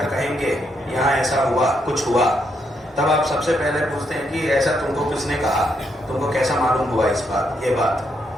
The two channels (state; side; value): normal; both; correlation 0.77